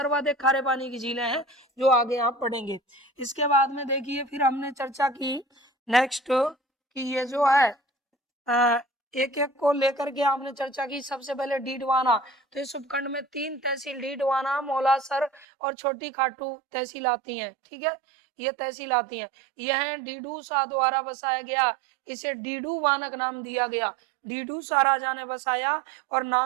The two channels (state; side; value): drops out; left; at 15.5 s